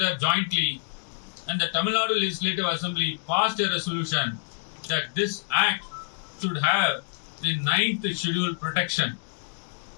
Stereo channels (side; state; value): right; silent; digital silence